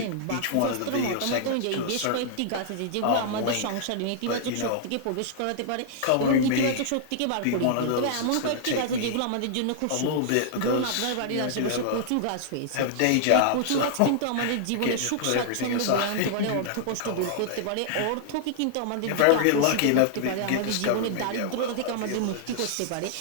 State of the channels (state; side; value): different; both; correlation -0.01